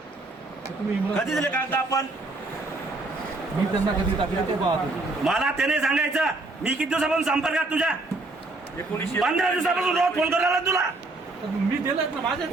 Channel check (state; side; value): quieter; left; 3.1 dB